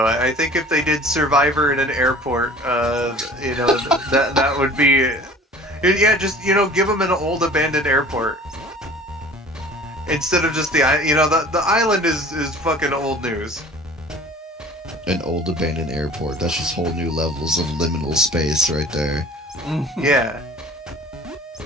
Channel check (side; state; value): both; normal; correlation 0.46